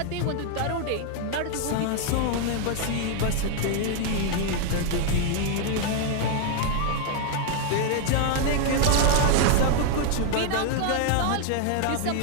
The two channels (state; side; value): different; both; correlation 0.00